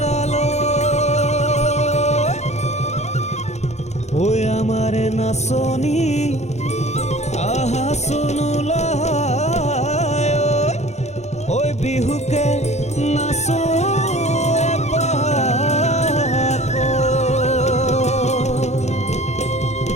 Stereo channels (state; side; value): late; right; 0.33 ms